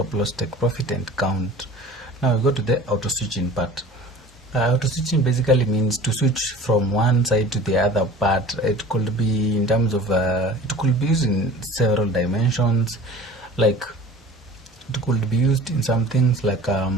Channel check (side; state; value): both; normal; correlation 0.42